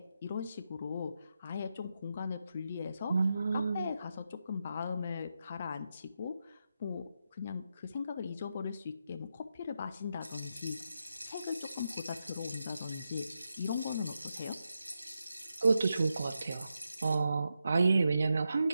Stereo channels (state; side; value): inverted; both; correlation -0.86